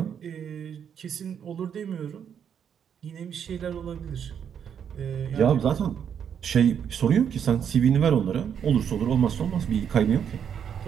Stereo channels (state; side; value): quieter; left; 8.2 dB